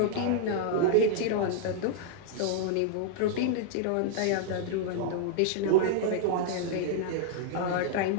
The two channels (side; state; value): both; different; correlation -0.01